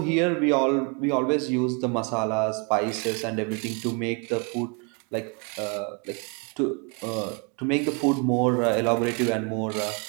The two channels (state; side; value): quieter; left; 34.2 dB